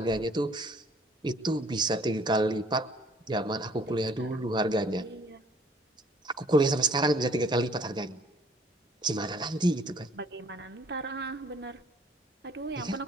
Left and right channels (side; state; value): both; normal; correlation 0.57